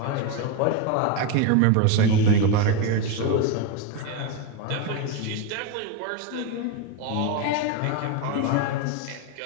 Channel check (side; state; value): both; different; correlation 0.03